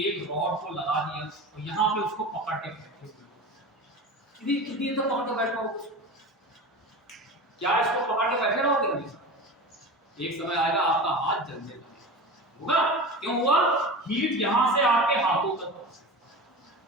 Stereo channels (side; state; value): both; normal; correlation 0.30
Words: रॉड को लगा दिया और यहाँ पे उसको पकड़ के बैठे हुए, कितनी देर तक पकड़ के बैठ पाओगे? क्या इसको पकड़ के बैठे रहोगे हमेशा? एक समय आएगा आपका हाथ जल जाएगा, होगा। क्यों हुआ? हीट यहां से आपके हाथों तक पहुंची,